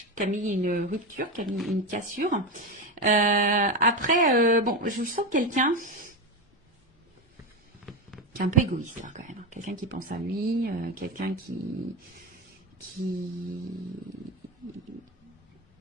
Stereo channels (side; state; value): both; normal; correlation 0.16